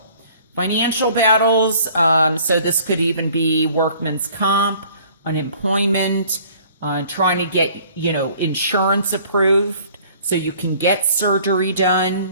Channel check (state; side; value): inverted; both; correlation -0.54